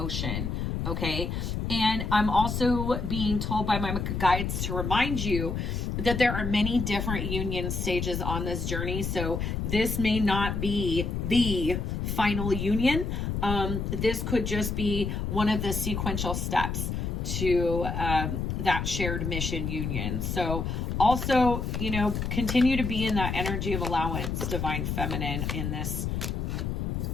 Okay. And I'm also being told by my guides to remind you that there are many different union stages on this journey. So this may not be the final union. This could just be one of the sequential steps to that shared mission union. So also, continue to be in that energy of allowance, Divine Feminine, in this.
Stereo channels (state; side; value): noise; left; rumble, 2 dB below the sound